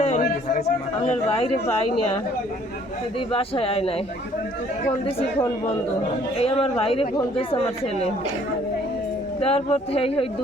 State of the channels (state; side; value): normal; both; correlation 0.60